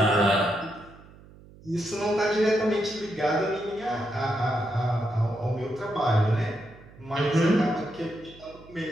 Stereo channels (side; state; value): right; noise; hum, 22 dB below the sound